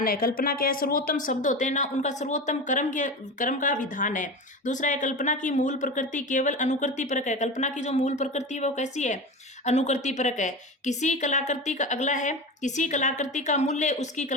है। कल्पना क्या है, सर्वोत्तम शब्द होते हैं ना, उनका सर्वोत्तम कर्म का विधान है। दूसरा है, कल्पना की मूल प्रकृति केवल अनुकृति परक है। कल्पना की जो मूल प्रकृति है वो कैसी है, अनुकृति परक है। किसी कलाकृति का अगला है, किसी कलाकृति का मूल्य उसकी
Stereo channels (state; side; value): normal; both; correlation 0.26